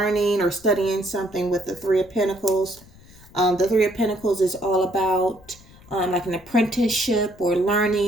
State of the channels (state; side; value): noise; left; rumble, 24 dB below the sound